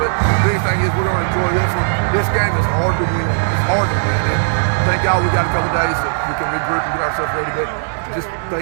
the big thing is we're going to enjoy this one. This game is hard to win. It's hard to win. And thank God we got a couple days that we can regroup and get ourselves ready. But just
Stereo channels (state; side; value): silent; left; digital silence